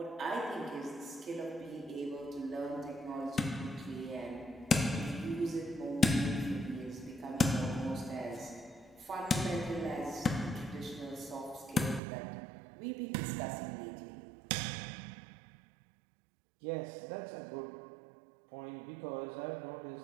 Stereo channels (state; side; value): drops out; left; at 12.0 s